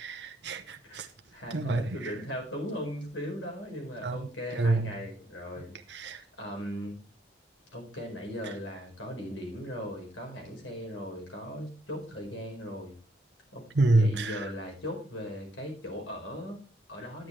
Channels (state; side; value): normal; both; correlation 0.71